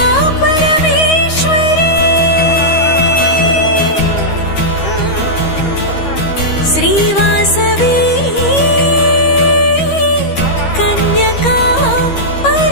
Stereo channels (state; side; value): late; right; 13 ms